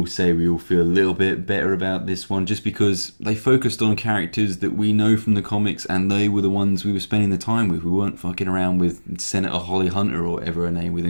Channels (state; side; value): inverted; both; correlation -1.00